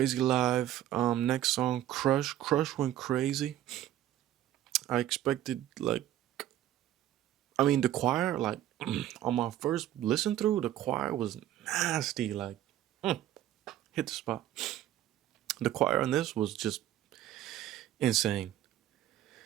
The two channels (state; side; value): quieter; left; 12.7 dB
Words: live. Next song, Crush. Crush went crazy. I expected, the choir, on my first listen through, the choir was nasty. Hit the spot. The choir on this was just insane.